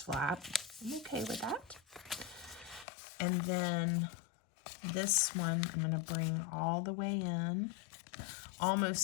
flap. I'm okay with that. And then this one, I'm going to bring all the way in,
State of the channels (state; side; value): drops out; right; at 2.9 s